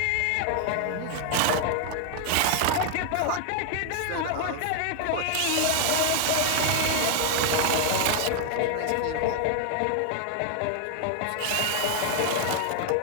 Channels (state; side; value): different; both; correlation 0.00